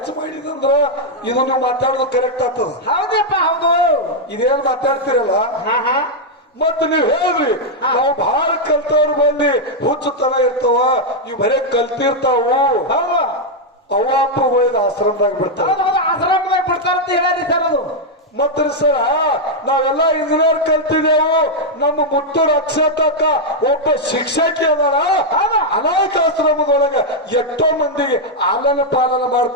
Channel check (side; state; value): both; normal; correlation -0.02